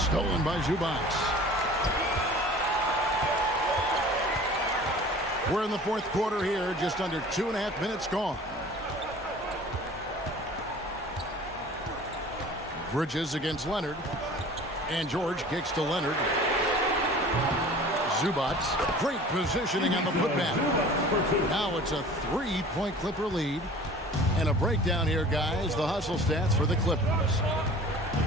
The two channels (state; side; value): normal; both; correlation 0.44